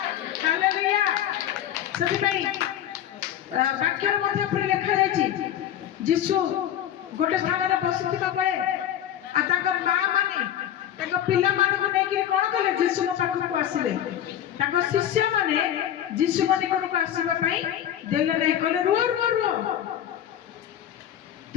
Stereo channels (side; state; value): right; quieter; 10.9 dB